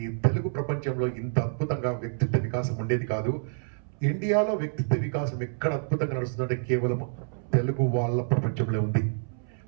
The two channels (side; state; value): left; silent; 60 dB below the other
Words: ఈ తెలుగు ప్రపంచంలో ఇంత అద్భుతంగా వ్యక్తిత్వ వికాసం ఉండేది కాదు. ఇండియాలో వ్యక్తిత్వ వికాసం ఎక్కడ అద్భుతంగా నడుస్తుందంటే కేవలం తెలుగు వాళ్ళ ప్రపంచంలో ఉంది.